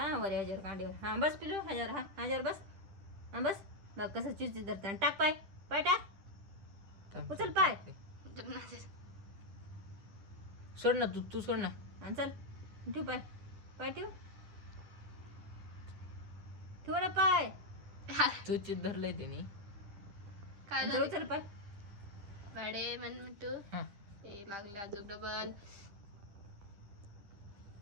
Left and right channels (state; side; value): late; left; 10 ms